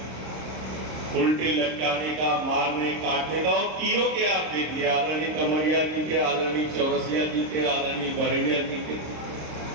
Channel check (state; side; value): late; left; 26 ms